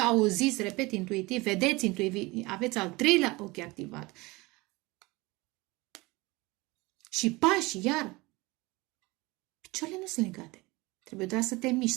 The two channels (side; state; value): left; quieter; 22.9 dB